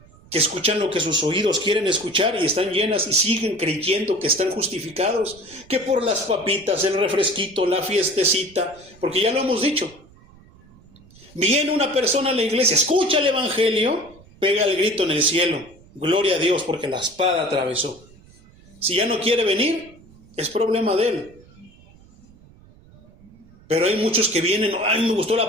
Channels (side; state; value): right; noise; rumble, 25 dB below the sound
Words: que escuchan lo que sus oídos quieren escuchar y están llenas y siguen creyendo que están justificados, que por las papitas, el refresquito, la fiestecita, porque ya lo hemos dicho. Viene una persona a la iglesia, escucha el evangelio, pega el grito en el cielo, gloria a Dios porque la espada atravesó. Si ya no quiere venir, es problema de él. Pero hay muchos que vienen, ay, me gustó la